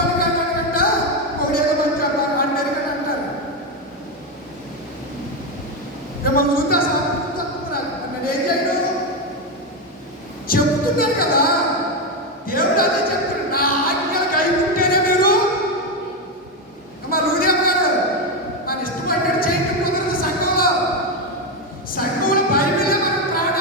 కానీ అంట ఒకడేదో మంచి అన్నరికని అంటారు. మిమ్మల్ని చూస్తే సాధించుకుంటున్నారు అన్నది ఏం చేయడం చెప్తున్నారు కదా. దేవుడు అదే చెప్తాడు, నా ఆజ్ఞలు కైకుంటేనే మీరు మా లూదేవ్ గారు మన ఇష్టపడ్డాడు చేయటం కుదరదు. సంఘంలో బైబిలే మనం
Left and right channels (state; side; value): normal; both; correlation 0.09